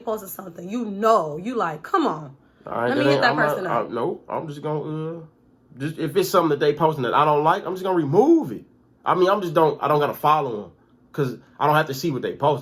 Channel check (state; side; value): identical; both; correlation 1.00